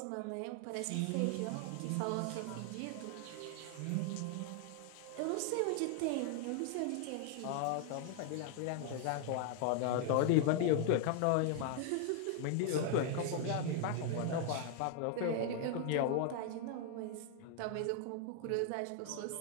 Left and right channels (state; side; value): different; both; correlation 0.00